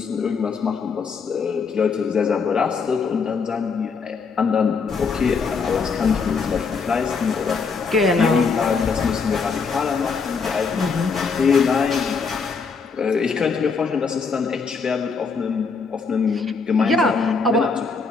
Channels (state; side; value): quieter; right; 5.1 dB